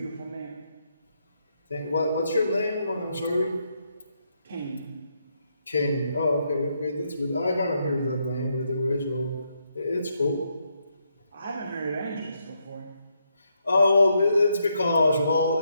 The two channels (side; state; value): both; inverted; correlation -0.78